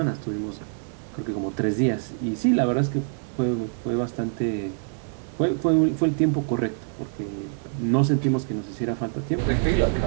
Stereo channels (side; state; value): left; silent; 57 dB below the other